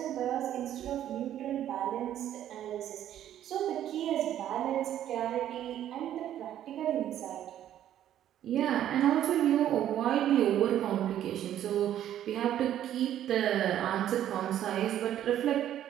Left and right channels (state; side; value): quieter; left; 11.4 dB